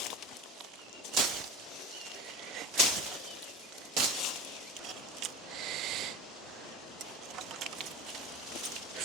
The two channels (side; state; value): both; normal; correlation 0.30